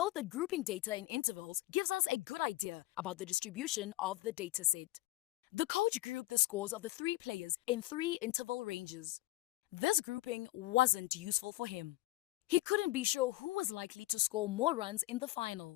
that grouping data in intervals gives us a good idea about the distribution of the dataset. The coach grouped the scores of the 3 players in 3 interval ranges. This grouping wasn't useful for him. He couldn't be sure who was likely to score more runs in the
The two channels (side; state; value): right; quieter; 17.6 dB